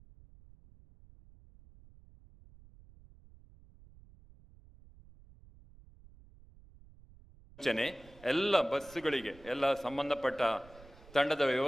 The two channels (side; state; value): right; noise; rumble, 23 dB below the sound